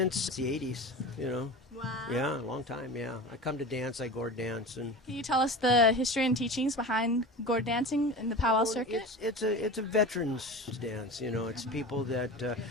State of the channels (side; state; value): both; normal; correlation 0.31